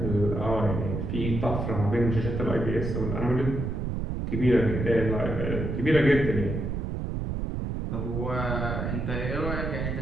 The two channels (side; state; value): right; noise; rumble, 2 dB below the sound